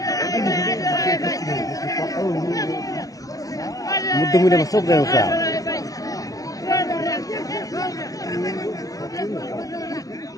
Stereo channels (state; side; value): late; right; 0.17 ms